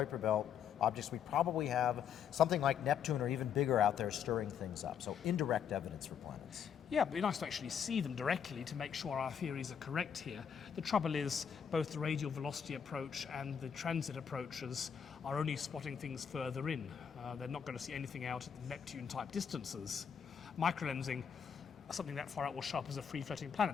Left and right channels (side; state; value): right; quieter; 7.8 dB